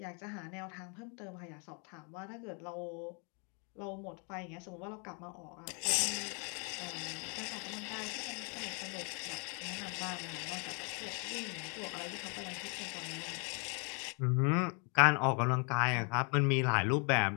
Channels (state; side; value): quieter; right; 36.6 dB